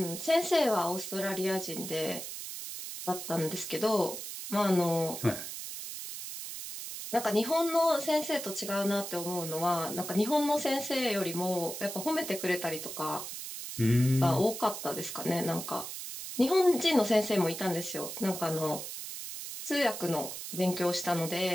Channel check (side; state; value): right; noise; hiss, 8 dB below the sound